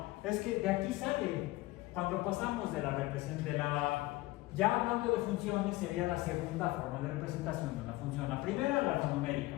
es que de aquí sale, cuando pasamos de la representación, ya hablando de funciones, sería la segunda forma de representación de una función. La primera, la numérica,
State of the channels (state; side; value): quieter; right; 19.4 dB